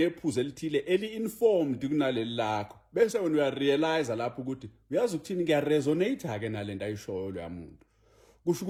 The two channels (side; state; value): both; identical; correlation 1.00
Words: elithile eli-informed kunaleli lakho bese wena uyarealize lapho ukuthi uyazi ukuthini kuyaresonate-ke nalento ayishoyo loya muntu. Kusho